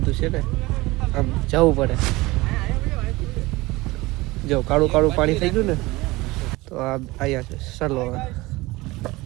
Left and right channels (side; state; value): left; quieter; 21.1 dB